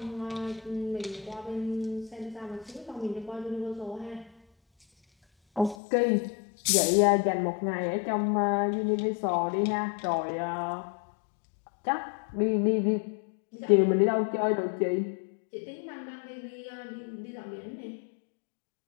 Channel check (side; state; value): right; drops out; at 5.8 s